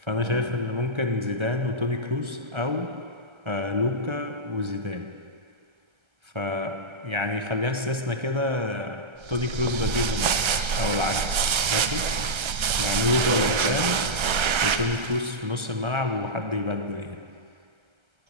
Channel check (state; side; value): late; left; 1.3 ms